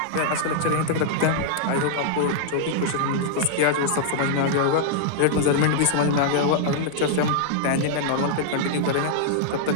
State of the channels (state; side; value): different; both; correlation -0.01